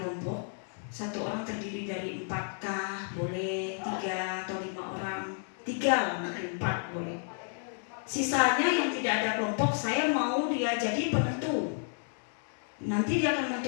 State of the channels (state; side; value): silent; right; 57 dB below the other